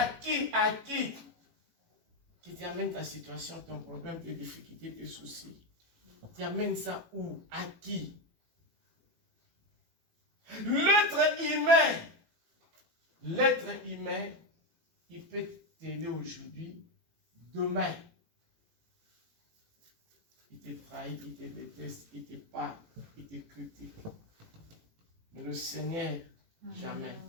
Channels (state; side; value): late; left; 18 ms